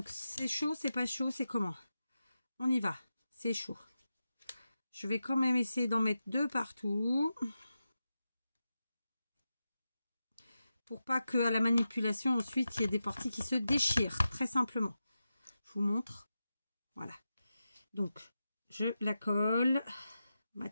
c'est chaud, c'est pas chaud, c'est comment? On y va. C'est chaud. Je vais quand même essayer d'en mettre 2 partout. Pour pas qu'à la manipulation, ensuite, il y ait des parties qui se déchirent. Très simplement. Je vous montre. Voilà. Donc, je la colle. Ma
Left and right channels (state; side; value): inverted; both; correlation -0.91